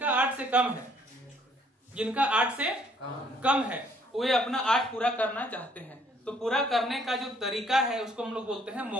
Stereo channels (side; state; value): both; normal; correlation 0.64